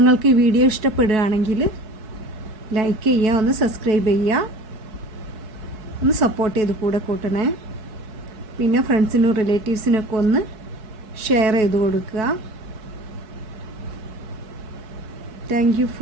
ഈ വീഡിയോ ഇഷ്ടപ്പെടുകയാണെങ്കിൽ ലൈക്ക് ചെയ്യുക, ഒന്ന് സബ്സ്ക്രൈബ് ചെയ്യുക, ഒന്ന് സപ്പോർട്ട് ചെയ്ത് കൂടെ കൂട്ടണേ. പിന്നെ ഫ്രണ്ട്സിനും റിലേറ്റീവ്സിനൊക്കെ ഒന്ന് ഷെയർ ചെയ്ത് കൊടുക്കുക. Thank you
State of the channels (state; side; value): late; left; 4.6 ms